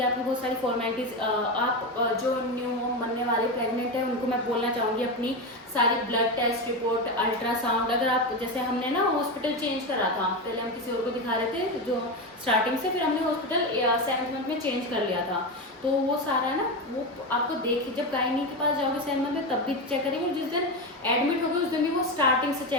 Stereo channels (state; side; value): normal; both; correlation 0.16